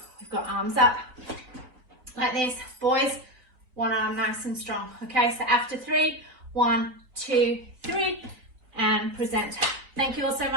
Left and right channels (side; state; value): left; late; 3.9 ms